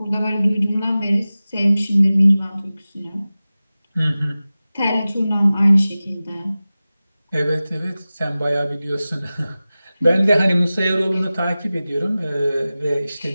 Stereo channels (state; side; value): inverted; both; correlation -0.96